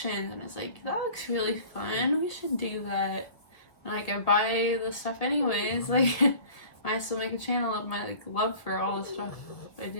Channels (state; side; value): late; right; 1.8 ms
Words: and it's like, that looks really fun, we should do that. And like, I buy the stuff anyways, like I still make a channel of my like love for all the stuff I